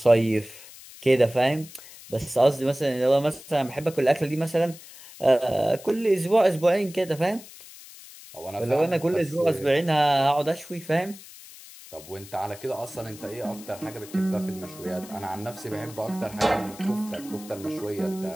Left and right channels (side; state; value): left; noise; hiss, 18 dB below the sound